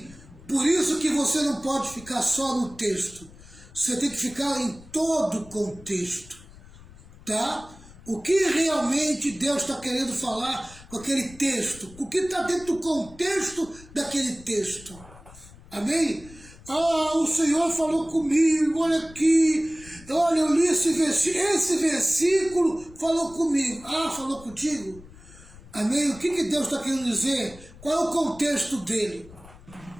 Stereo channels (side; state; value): left; noise; rumble, 21 dB below the sound